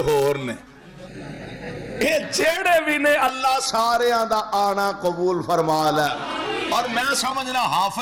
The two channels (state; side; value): identical; both; correlation 1.00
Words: ہور نے، اے جیڑے بھی نے اللہ سارے دا آنا قبول فرما لے۔ اور میں سمجھنا